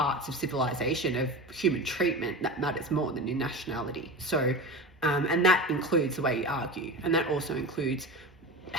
of civilization, of human treatment, that matters more than your nationality. So, and that includes the way you argue, and that also includes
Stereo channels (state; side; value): normal; both; correlation 0.28